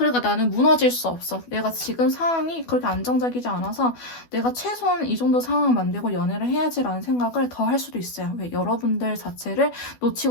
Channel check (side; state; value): right; late; 12 ms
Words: 나는 무너질 수 없어. 내가 지금 상황이 그렇게 안정적이지 않아서 내가 최소한 이 정도 상황을 만들고 연애를 해야지라는 생각을 더 할 수도 있어요. 왜? 여러분들 자체를